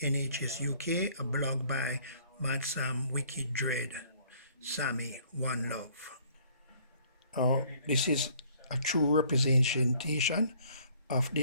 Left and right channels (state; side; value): inverted; both; correlation -0.59